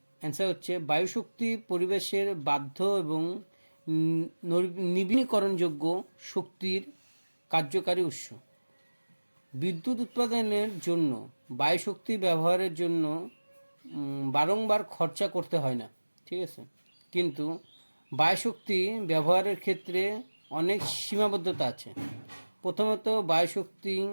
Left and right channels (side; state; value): both; inverted; correlation -1.00